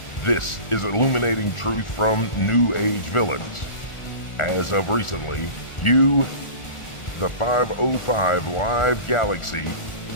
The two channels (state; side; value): late; right; 1.4 ms